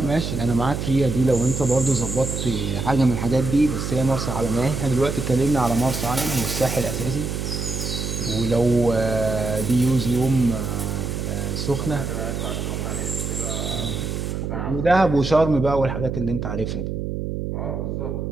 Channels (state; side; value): noise; right; hum, 3 dB below the sound